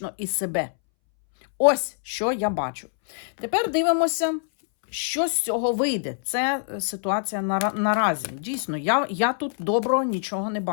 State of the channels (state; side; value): silent; right; 62 dB below the other